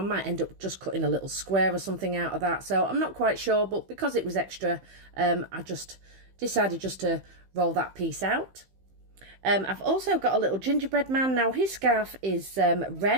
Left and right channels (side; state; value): left; late; 15 ms